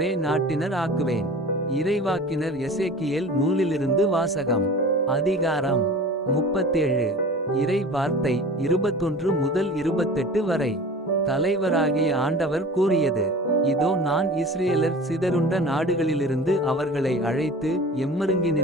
நாட்டினர் ஆக்குவேன். இறைவாக்கினர் எசேக்கியேல் நூலிலிருந்து வாசகம். அதிகாரம் 37. இறை வார்த்தை 21 முதல் 28 வரை. தலைவராகிய ஆண்டவர் கூறியது: இதோ, நான் இஸ்ரேலர் சிதறுண்ட நாடுகளிலிருந்து அவர்களை அழைத்து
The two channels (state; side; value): normal; both; correlation 0.39